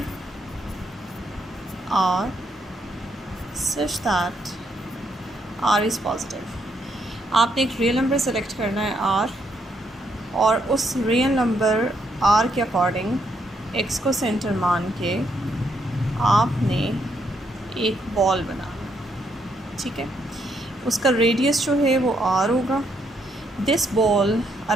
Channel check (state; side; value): normal; both; correlation 0.75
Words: R such that R is positive. आपने एक रियल नंबर सेलेक्ट करना है आर, और उस रियल नंबर आर के अकॉर्डिंग एक्स को सेंटर मान के आपने एक बॉल बनाना, ठीक है। उसका रेडियस जो है वो आर होगा। This ball